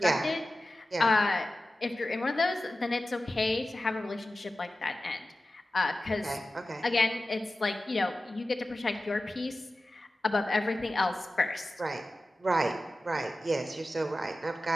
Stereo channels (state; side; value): normal; both; correlation 0.95